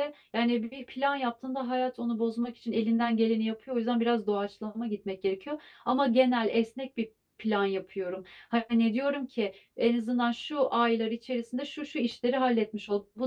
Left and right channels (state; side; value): identical; both; correlation 1.00